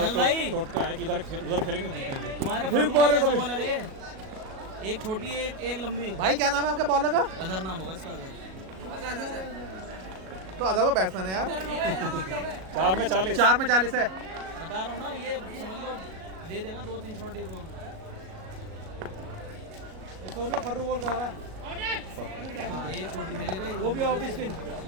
भाई। उनका टोटका है कि उधर खेलेंगे जीतेंगे। तुम्हारे फिर मारे कभी। बॉलर है ये। एक छोटी एक लंबी। भाई क्या नाम है आपके बॉलर का? अजहर नाम होगा इसका अजहर। तो अदर तो बैट्समैन है यार। 4 में 40। 4 में 40 है। बता रहा हूँ ना, ये समझ लो दे देगा 2-3 शॉट एक और। फर्रू बॉल कह रहा है एक छोटी भेजेगा वो भी ऑफ स्पिन।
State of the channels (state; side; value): late; left; 37 ms